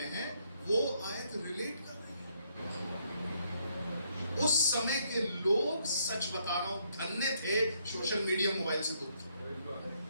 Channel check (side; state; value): both; inverted; correlation -0.72